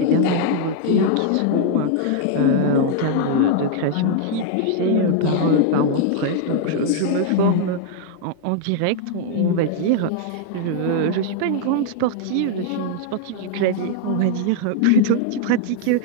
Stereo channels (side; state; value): both; different; correlation 0.00